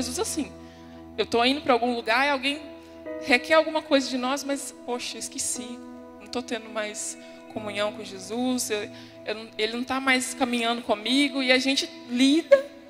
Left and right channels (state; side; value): identical; both; correlation 1.00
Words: assim. Eu estou indo para algum lugar e alguém requer alguma coisa de nós, mas, poxa, eu esqueci. Não estou tendo mais comunhão com Jesus, ele não está mais caminhando comigo. E a gente lida,